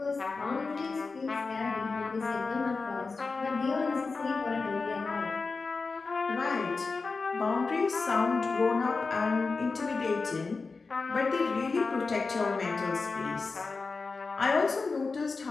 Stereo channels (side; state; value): right; quieter; 4.2 dB